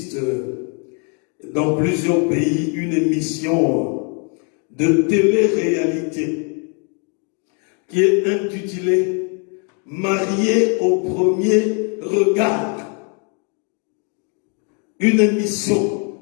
dans plusieurs pays une émission de télé-réalité qui est intitulée « Marié au premier regard ». Une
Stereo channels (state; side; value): quieter; right; 38.3 dB